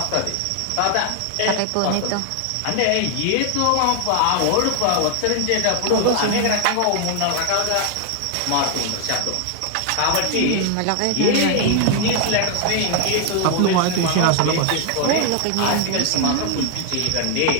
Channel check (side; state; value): both; different; correlation 0.00